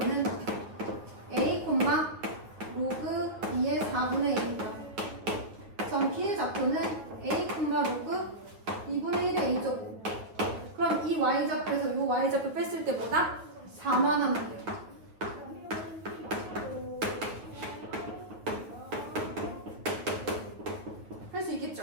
A, 로그 2의 4분의 1이다. 점 B의 좌표는 A, 로그 2분의 1의 A제곱. 그럼 이 Y좌표에서 이 Y좌표 뺐을 때 뭐다? 4만 하면 돼요. 할 수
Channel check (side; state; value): left; late; 9.4 ms